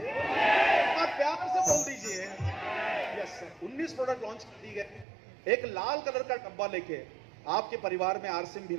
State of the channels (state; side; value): drops out; left; at 5.1 s